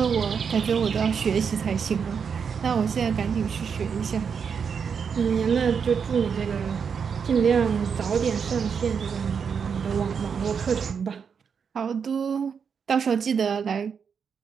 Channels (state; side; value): quieter; left; 6.5 dB